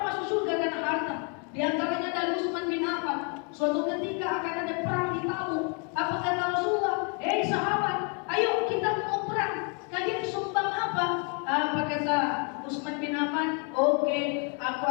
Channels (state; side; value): quieter; right; 37.5 dB